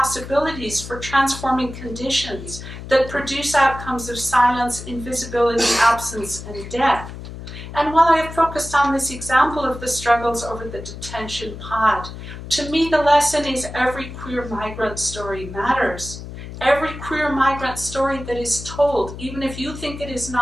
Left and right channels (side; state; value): left; noise; hum, 11 dB below the sound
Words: for transforming conditions that produce outcomes of silence, invisibility, absence, and death. And while I have focused on this example of the struggles over the detention pod, to me the lesson is every queer migrant story matters. Every queer migrant story that is told, even if you think it is